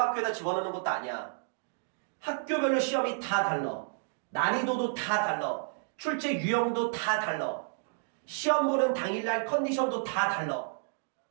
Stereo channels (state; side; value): silent; left; digital silence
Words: 집어넣는 것도 아니야. 학교별로 시험이 다 달라. 난이도도 다 달라. 출제 유형도 다 달라. 시험 보는 당일날 컨디션도 다 달라.